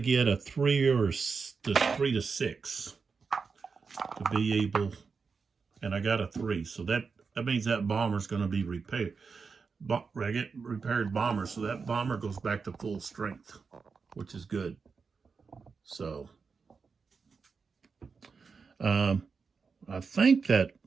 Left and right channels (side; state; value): left; quieter; 5.2 dB